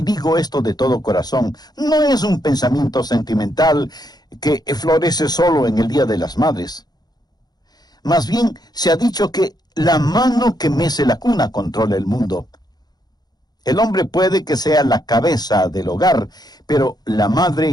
digo esto de todo corazón, no es un pensamiento sentimental que florece solo en el Día de las Madres. Más bien, se ha dicho que la mano que mece la cuna controla el mundo. El hombre puede que sea la cabeza del hogar, pero la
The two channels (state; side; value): late; right; 0.19 ms